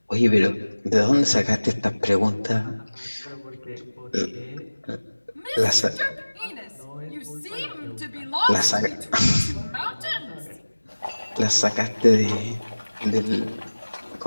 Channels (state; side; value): inverted; both; correlation -1.00